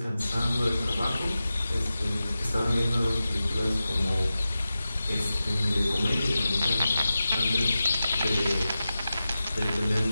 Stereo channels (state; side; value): inverted; both; correlation -0.94